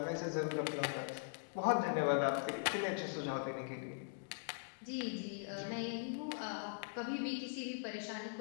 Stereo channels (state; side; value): silent; right; digital silence